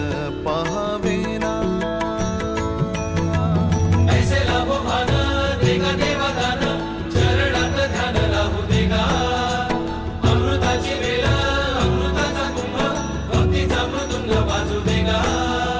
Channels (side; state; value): both; identical; correlation 1.00